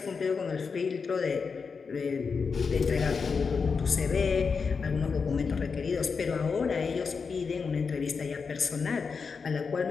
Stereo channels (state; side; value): quieter; right; 5.3 dB